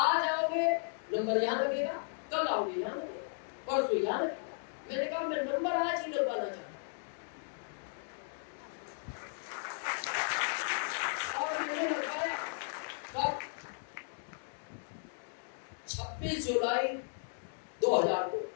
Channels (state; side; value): silent; right; digital silence